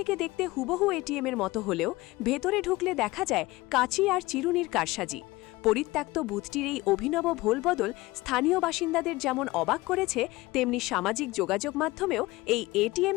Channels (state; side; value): quieter; right; 20.2 dB